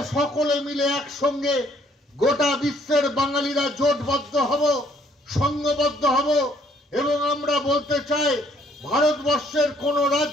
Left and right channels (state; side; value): normal; both; correlation 0.64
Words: সকলে মিলে একসঙ্গে গোটা বিশ্বের বাঙালিরা জোটবদ্ধ হব, সংঘবদ্ধ হব। এবং আমরা বলতে চাই, ভারতবর্ষের কোন